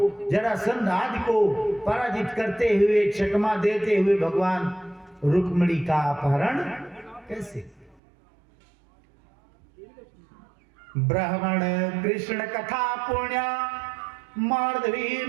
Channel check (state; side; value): drops out; left; at 8.0 s